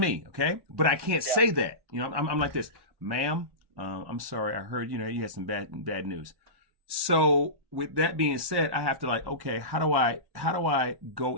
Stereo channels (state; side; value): late; left; 1.1 ms